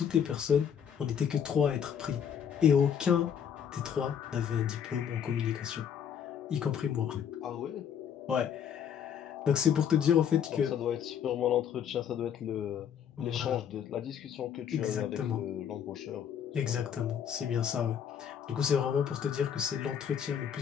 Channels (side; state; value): right; quieter; 8.3 dB